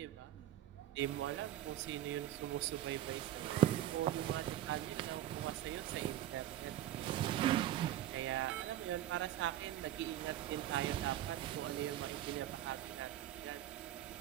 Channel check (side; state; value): left; quieter; 12.7 dB